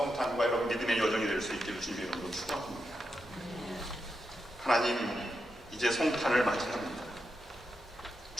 여러분 믿음의 여정이 될 수 있기를 주님의 이름으로 축원합니다. 하나님, 이제 성탄을 맞이합니다.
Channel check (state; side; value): normal; both; correlation 0.86